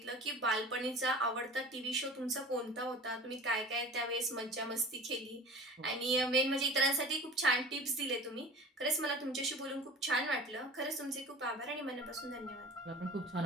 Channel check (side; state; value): both; normal; correlation 0.40